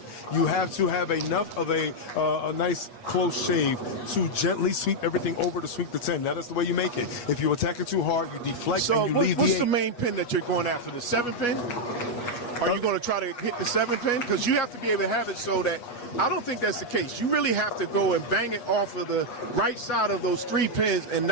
You have to have enough of a nice close shave to gently sweep everything over to sweep the 10. That is the way you make it. If you attack it too hard, you deflect and you leave the 8. What's the main pin that you're going after? The 7 pin? Are you going to try to hit the 7 pin? Because you have to be able to have it so that I don't think that's the case. You really have to go and bang it off of the right side of those 3 pins and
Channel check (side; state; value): right; late; 8.3 ms